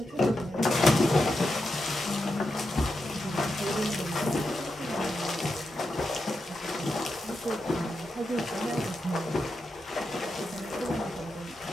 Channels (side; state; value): both; normal; correlation 0.87